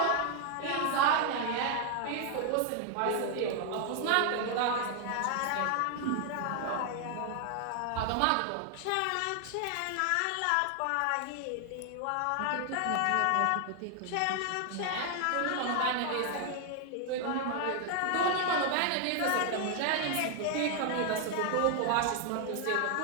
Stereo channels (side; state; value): both; different; correlation 0.00